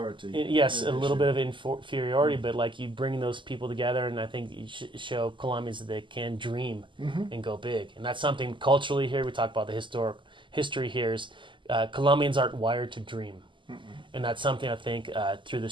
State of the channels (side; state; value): left; late; 0.24 ms